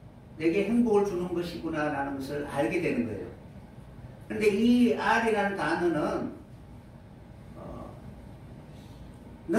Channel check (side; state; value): both; identical; correlation 1.00